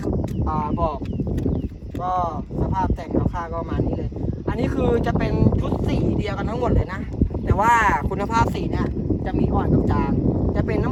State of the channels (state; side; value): identical; both; correlation 1.00